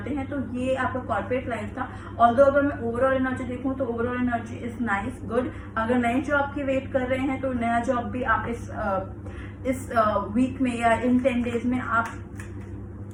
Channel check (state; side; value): identical; both; correlation 1.00